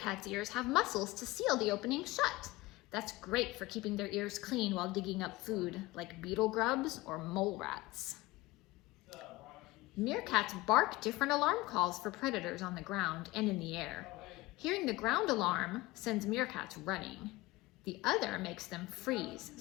ears have muscles to seal the opening shut. That's great for keeping their ears clean while digging up food, like beetle grubs or mole rats. Meerkats bark different alarm calls for predators on the ground and in the air. Hearing the ground alarm sends meerkats running. The other makes them freeze,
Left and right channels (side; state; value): right; quieter; 20.1 dB